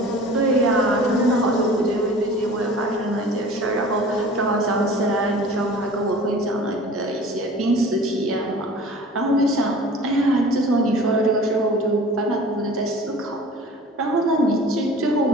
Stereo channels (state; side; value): normal; both; correlation 0.43